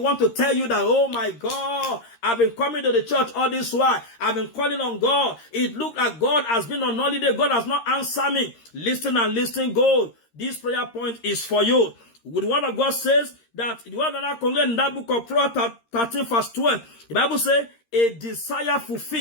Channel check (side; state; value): right; late; 13 ms